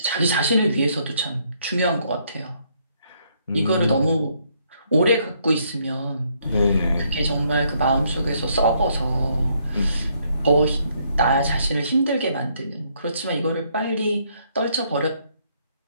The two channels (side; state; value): both; inverted; correlation -0.70